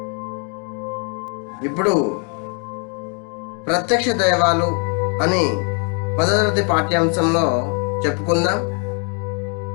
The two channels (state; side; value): quieter; right; 38.9 dB